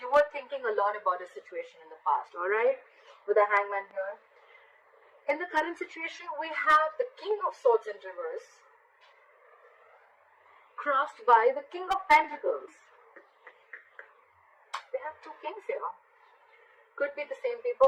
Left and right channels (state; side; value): identical; both; correlation 1.00